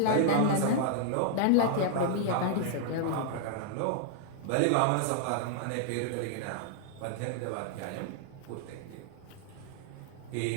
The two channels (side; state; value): both; different; correlation -0.01